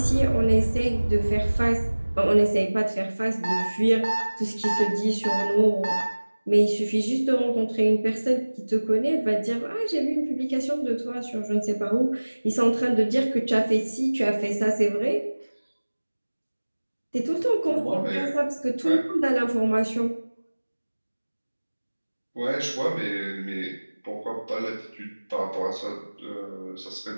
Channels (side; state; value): both; inverted; correlation -1.00